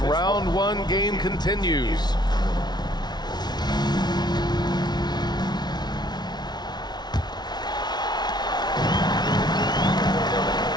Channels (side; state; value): right; late; 0.20 ms